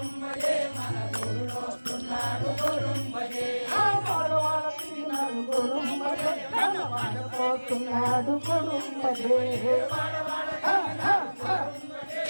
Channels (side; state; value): both; inverted; correlation -1.00